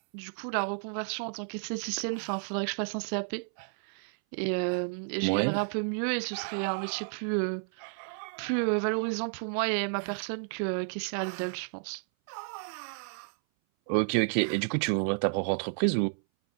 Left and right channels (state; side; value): silent; left; 57 dB below the other